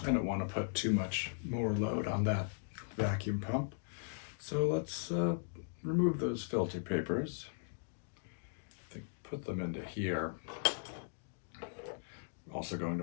I don't want to put too much more load on that vacuum pump. So let's remove those filter papers. I think put them into here. We're also going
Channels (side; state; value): right; silent; digital silence